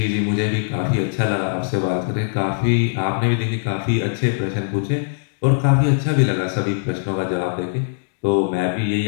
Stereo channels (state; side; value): silent; right; digital silence